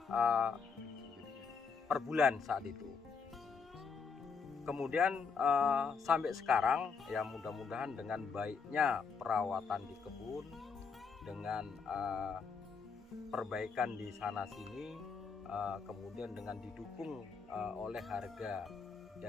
per bulan saat itu. Kemudian sampai sekarang, ya, mudah-mudahan dengan baiknya perawatan di kebun, dengan perbaikan di sana sini, kemudian dengan didukung oleh harga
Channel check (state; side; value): quieter; right; 5.4 dB